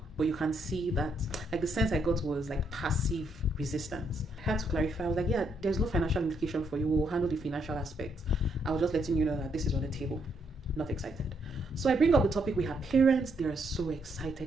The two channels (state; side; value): normal; both; correlation 0.74